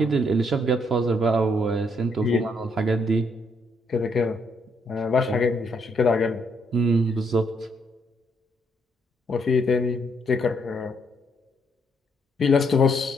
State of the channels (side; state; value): both; normal; correlation 0.72